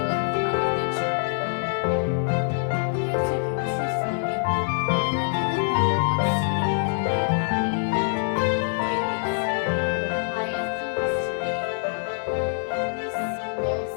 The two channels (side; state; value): right; silent; digital silence